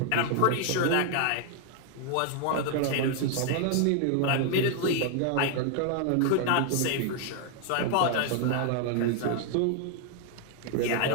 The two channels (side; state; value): both; different; correlation 0.00